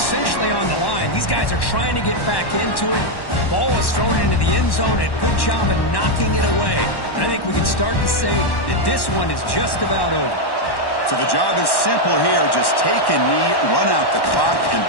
on the line. These guys are trying to get back into it. Ball is thrown into the end zone, and good job of knocking it away. And I think we can start to say that this one is just about over. So the job is simple here. Just take a knee, run out the clock, and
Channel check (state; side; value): late; right; 1.1 ms